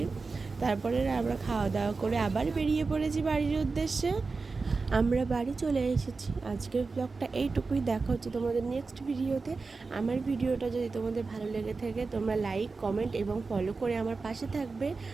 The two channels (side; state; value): left; quieter; 4.2 dB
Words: তারপরে আমরা খাওয়া দাওয়া করে আবার বেরিয়ে পড়েছি বাড়ির উদ্দেশ্যে। আমরা বাড়ি চলে এসেছি। আজকের ব্লগটা এইটুকুই, দেখা হচ্ছে তোমাদের নেক্সট ভিডিওতে। আমার ভিডিওটা যদি তোমাদের ভালো লেগে থাকে, তোমরা লাইক, কমেন্ট এবং ফলো করে আমার পাশে থাকবে।